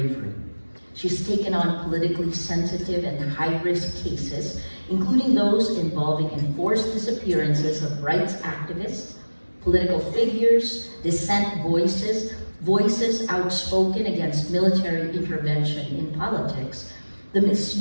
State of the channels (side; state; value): both; inverted; correlation -1.00